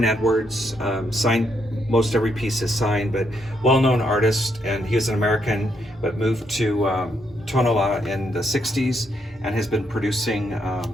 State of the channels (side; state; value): both; normal; correlation 0.76